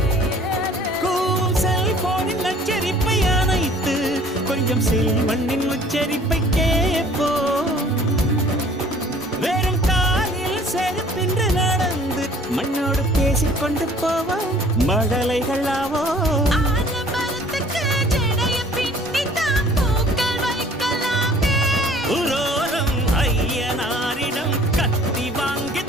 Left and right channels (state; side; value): normal; both; correlation 0.53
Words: கூவும் செல்போனின் நச்சரிப்பை அணைத்து கொஞ்சம் செல்வண்ணின் உச்சரிப்பை கேட்போ வெறும் காலில் செருப்பின்று நடந்து மண்ணோடு பேசிக்கொண்டு போவோம் மடலைகள் ஆவோ உரோரம் ஐயனாரிடம் கத்தி